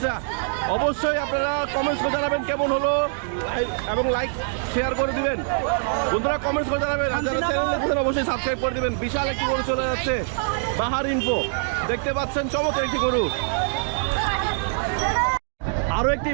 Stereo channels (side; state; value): left; silent; digital silence